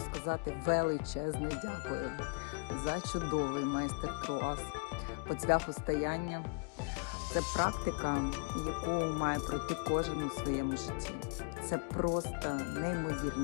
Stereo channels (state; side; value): quieter; right; 39.4 dB